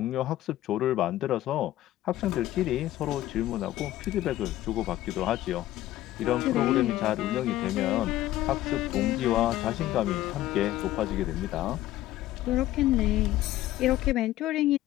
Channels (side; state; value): right; quieter; 14.7 dB